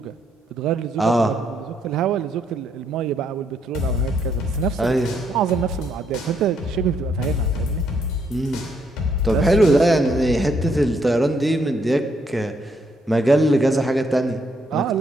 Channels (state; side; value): normal; both; correlation 0.73